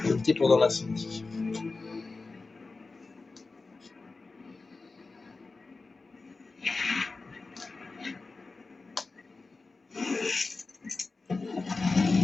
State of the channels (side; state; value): right; quieter; 3.8 dB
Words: Limité pendant l'incendie.